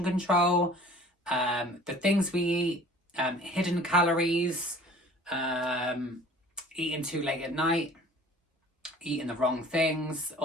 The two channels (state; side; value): normal; both; correlation 0.48